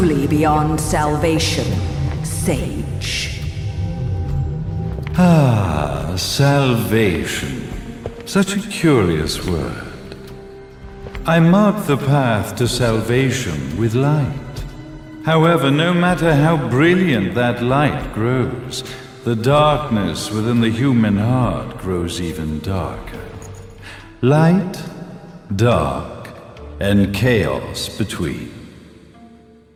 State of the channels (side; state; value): both; identical; correlation 1.00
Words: beyond salvation, sage. Salvation. Such a curious word. I mark the path to salvation with light. However, no matter how brilliant that light grows, the darkness within the human heart grows even darker. Light, dark, and chaos between.